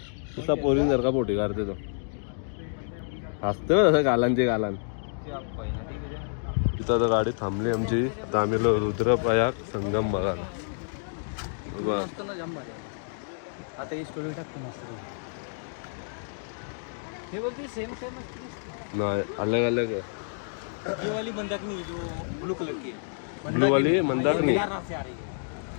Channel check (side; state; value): right; silent; digital silence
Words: तुझा पोरीन सारखा पोटी काढते तो. हसते ना तसं गालांचे गालान. तिथं आता गाडी थांबली आमची. आता आम्ही आलो रुद्रप्रयाग संगम बघायला. आता ही स्टोरी टाकतो मस्त. हे बोलते सेम सेम नाही अलग अलग है. ये वाली मंदाकिनी जो ब्लू कलर की ब्लू वाली मंदाकिनी. से आ रही है